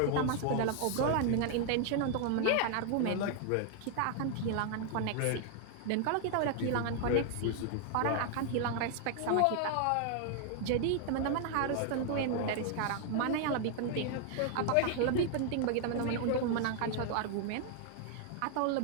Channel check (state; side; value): different; both; correlation 0.00